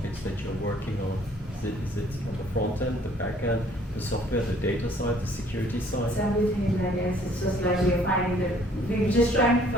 that you're working on? Is it on the front end, the back end, the software, the data side, the security side? It's everything, I guess. It's just like we're finding that we're just trying to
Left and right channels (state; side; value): normal; both; correlation 0.59